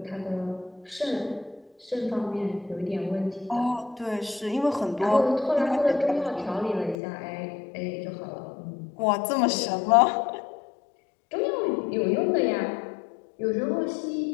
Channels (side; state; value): right; drops out; at 7.0 s